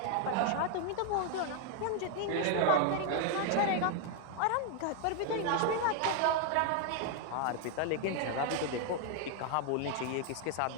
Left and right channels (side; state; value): both; different; correlation 0.00